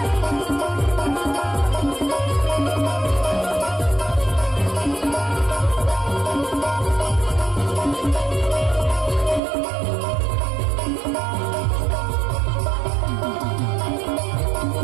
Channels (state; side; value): drops out; left; at 9.4 s